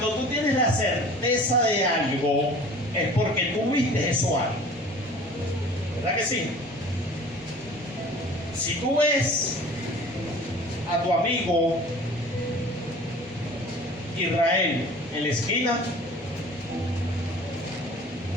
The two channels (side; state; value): both; normal; correlation 0.44